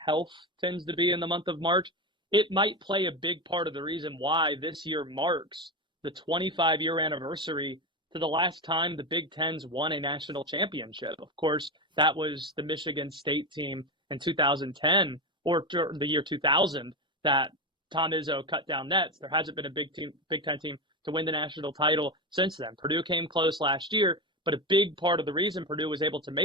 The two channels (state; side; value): normal; both; correlation 0.17